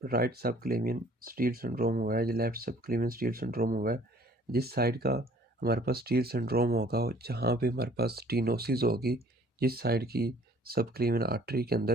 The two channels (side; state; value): both; normal; correlation 0.55